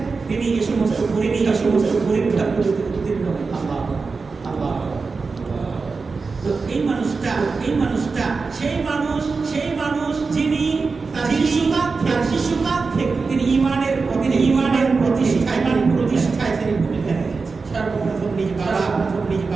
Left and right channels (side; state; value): left; quieter; 4.4 dB